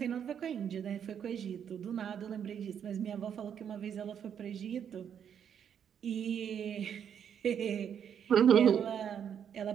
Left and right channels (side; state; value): left; quieter; 8.4 dB